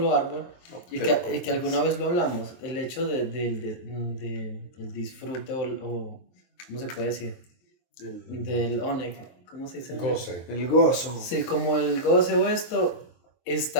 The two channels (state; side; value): late; right; 23 ms